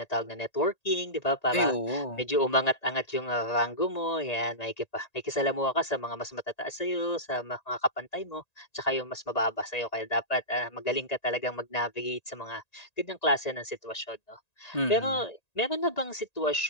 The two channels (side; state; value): right; late; 1.9 ms